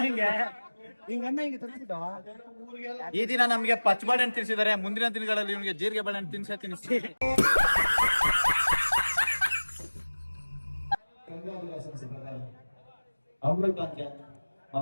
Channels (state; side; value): inverted; both; correlation -1.00